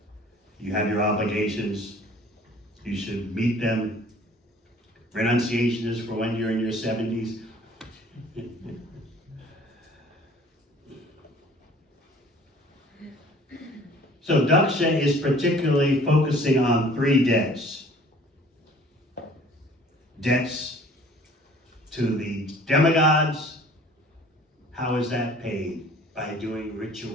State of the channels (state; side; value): normal; both; correlation 0.52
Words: You have your obligations, you should meet them. Renunciation is for when you're in your 70s. So Daksha is particularly focusing on 3 debts. Debts to the demigods. How is that paid? By doing